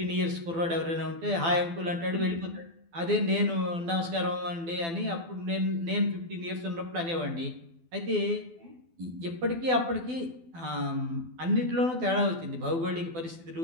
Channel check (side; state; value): left; late; 12 ms